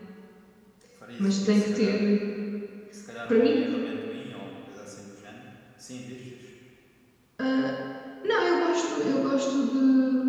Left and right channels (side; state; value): both; identical; correlation 1.00